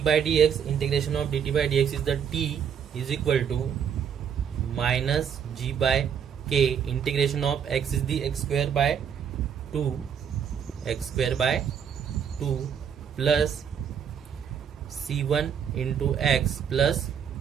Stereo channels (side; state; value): left; quieter; 7.8 dB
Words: by dx, integration of dt by dx is the T is equal to minus G by K, integration of X is the x square by 2 plus C1 into X plus